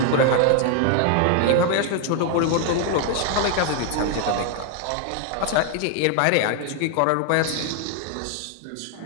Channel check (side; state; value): both; different; correlation 0.00